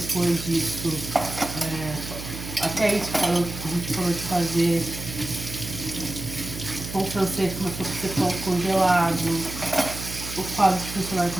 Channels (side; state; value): right; noise; hum, 9 dB below the sound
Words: disso, até isso a gente parou de fazer. O pão francês começou a ser pão congelado. O quadro de funcionário